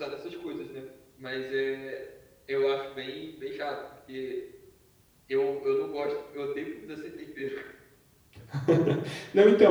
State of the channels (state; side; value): identical; both; correlation 1.00